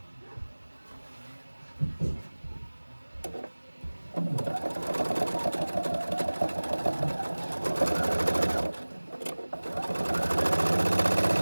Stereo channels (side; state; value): both; inverted; correlation -1.00